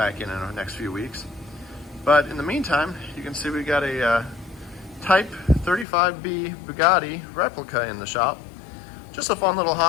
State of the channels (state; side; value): drops out; right; at 5.9 s